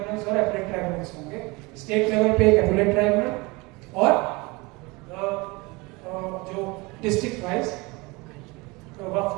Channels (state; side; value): quieter; left; 25.2 dB